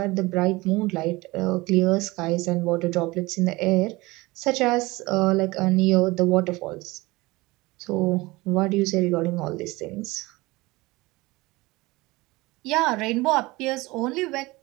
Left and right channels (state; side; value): quieter; left; 21.7 dB